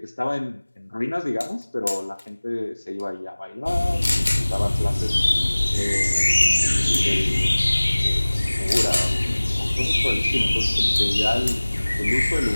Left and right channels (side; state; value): both; inverted; correlation -1.00